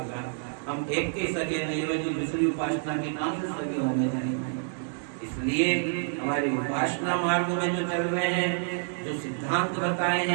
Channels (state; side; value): silent; left; digital silence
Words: हम एक के सगे नहीं हुए तो दूसरी उपासना के कहां से सगे होने जाएंगे। इसलिए हमारी उपासना मार्ग में जो चल रहे हैं, जो सिद्धांत बताए